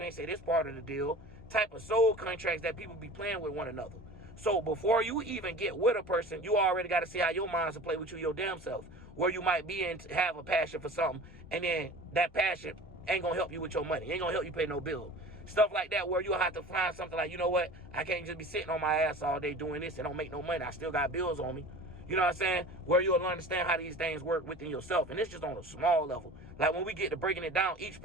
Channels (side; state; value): both; normal; correlation 0.39